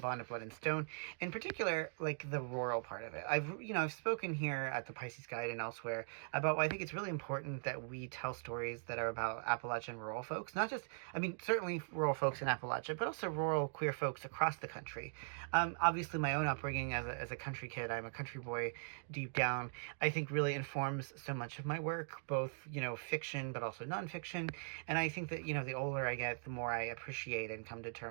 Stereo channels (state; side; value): silent; left; digital silence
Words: of Blood and Stone. In particular, like the rural part of it. I've spoken here at the Pisces Guide and elsewhere about why I think it's really important that we tell stories that are about Appalachian rural folks. Not just, certainly rural folks in Appalachia, but also rural queer folks across the country. Obviously my own upbringing as a country kid, I'm a country boy deep down, I think really informs so much of my work, both, fiction but also nonfiction. And I think that the older I get, the more I appreciate and come to